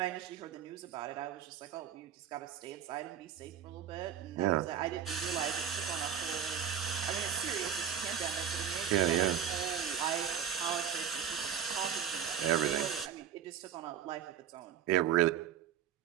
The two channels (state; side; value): quieter; left; 8.7 dB